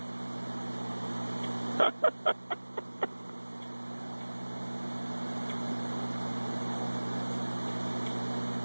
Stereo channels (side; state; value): both; inverted; correlation -1.00